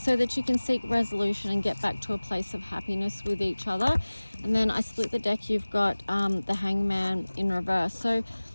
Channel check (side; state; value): both; inverted; correlation -1.00